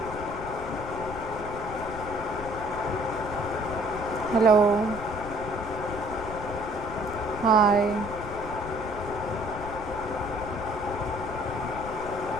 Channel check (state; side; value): noise; left; rumble, 11 dB below the sound